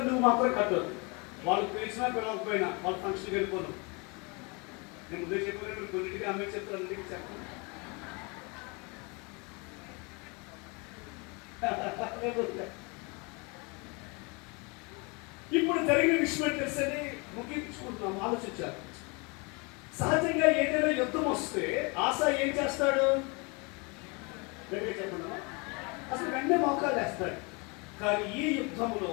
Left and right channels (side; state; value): right; quieter; 30.0 dB